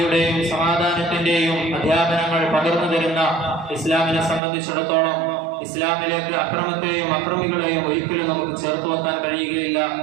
സമാധാനത്തിന്റെയും അധ്യാപനങ്ങൾ പകർന്നു തരുന്ന ഇസ്ലാമിനെ സംബന്ധിച്ചിടത്തോളം ഇസ്ലാമിലേക്ക് അക്രമത്തെയും അക്രമികളെയും ഒരിക്കലും നമുക്ക് ചേർത്ത് വെക്കാൻ കഴിയുകയില്ല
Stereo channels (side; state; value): left; drops out; at 4.4 s